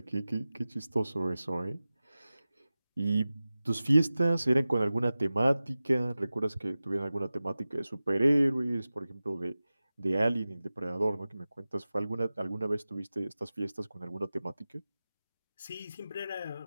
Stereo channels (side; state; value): both; inverted; correlation -0.96